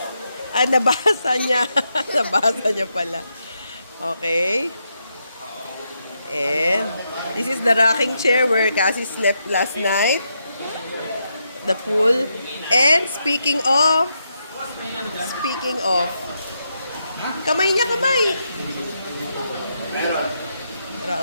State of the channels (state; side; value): inverted; both; correlation -0.82